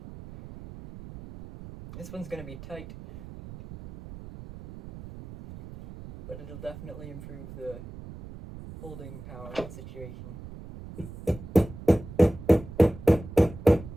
This one's going to be tight, but it'll definitely improve the holding power of the situation.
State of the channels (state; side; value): noise; right; rumble, 14 dB below the sound